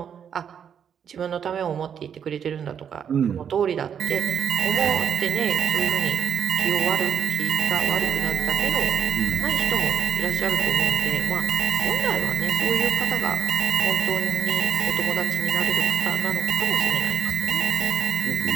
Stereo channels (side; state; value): left; quieter; 8.0 dB